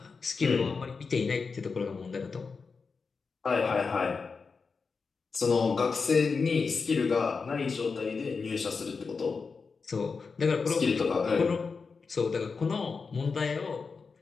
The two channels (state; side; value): quieter; right; 4.9 dB